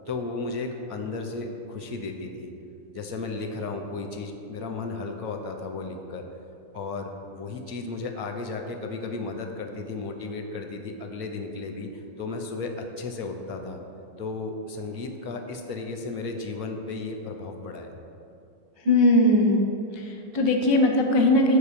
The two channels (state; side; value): late; left; 15 ms